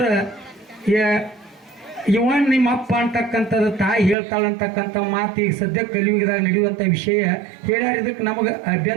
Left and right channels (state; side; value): drops out; left; at 4.2 s